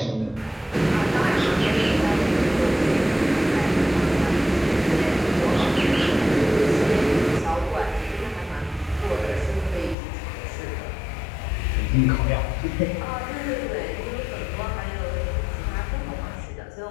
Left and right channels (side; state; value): right; drops out; at 10.0 s